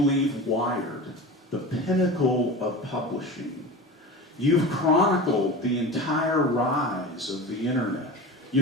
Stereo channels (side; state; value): both; normal; correlation 0.31